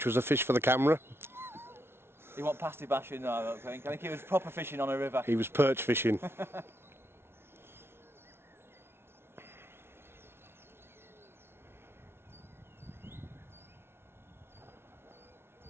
was a fish for the camera. He wasn't pasty bashing, no, I don't think. I think he was proper fishing on a river. He was perch fishing.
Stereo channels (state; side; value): late; left; 0.12 ms